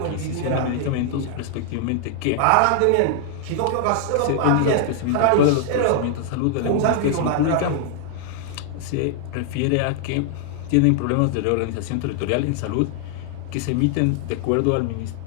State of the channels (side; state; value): both; different; correlation 0.00